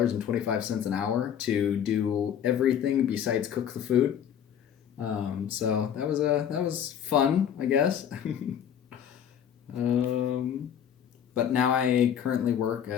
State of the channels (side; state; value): right; quieter; 9.0 dB